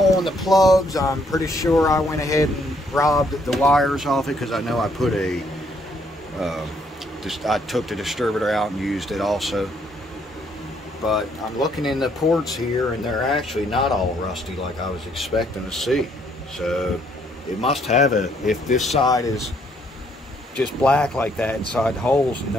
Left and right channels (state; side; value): normal; both; correlation 0.69